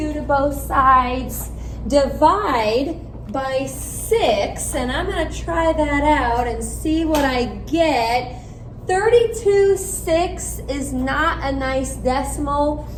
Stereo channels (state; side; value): identical; both; correlation 1.00